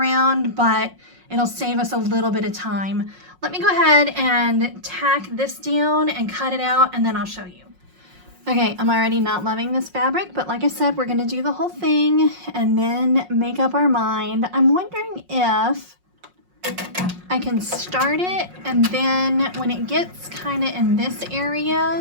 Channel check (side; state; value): left; late; 5.5 ms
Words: but it'll save us a little bit of time. Let me go ahead and tack this down and cut it out, and then I'll show you. Okay, I'm already not loving this fabric, but like I said, we're gonna do the whole thing and then make up our mind. I'm wondering if I can start it, and then when it gets kind of in this